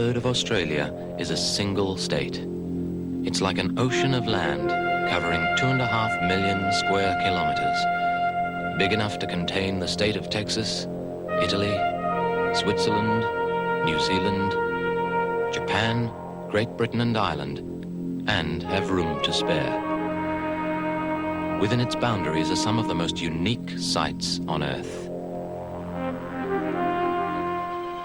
of Australia is a single state. It's like an ocean of land covering 2.5 million square kilometers, big enough to contain the state of Texas, Italy, Switzerland, New Zealand, Japan, Great Britain and Ireland, and have room to spare. Within its boundaries are some of the most unique sights on Earth.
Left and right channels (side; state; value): both; identical; correlation 1.00